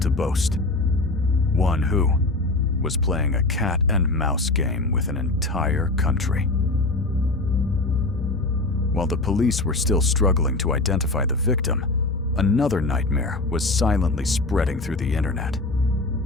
to boast. One who was playing a cat and mouse game with an entire country. While the police were still struggling to identify the victim, another nightmare was silently spreading through the internet.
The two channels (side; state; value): right; quieter; 3.0 dB